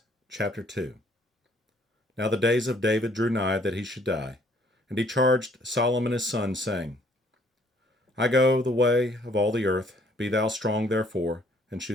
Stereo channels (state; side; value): normal; both; correlation 0.62